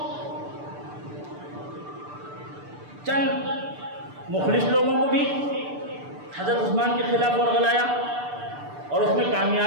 چند مخلص لوگوں کو بھی حضرت عثمان کے خلاف ورغلایا، اور اس میں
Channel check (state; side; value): late; left; 6.8 ms